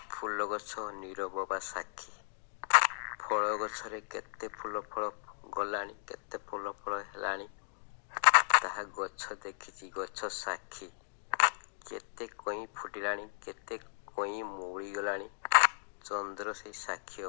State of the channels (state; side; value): silent; right; digital silence